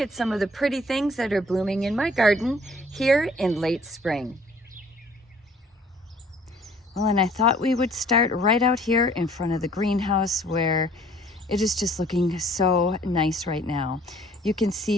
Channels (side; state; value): both; normal; correlation 0.56